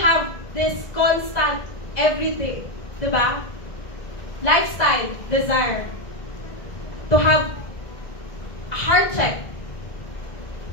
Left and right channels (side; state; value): right; late; 1.9 ms